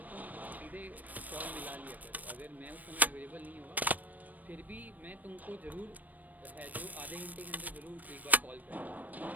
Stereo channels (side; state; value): left; late; 0.081 ms